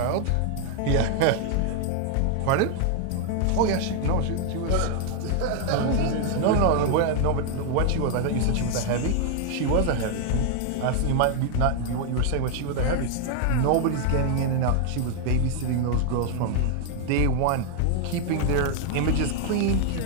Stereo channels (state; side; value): different; both; correlation 0.00